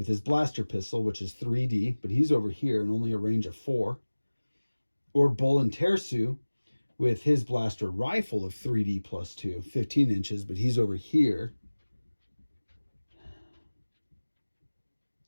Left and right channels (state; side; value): inverted; both; correlation -1.00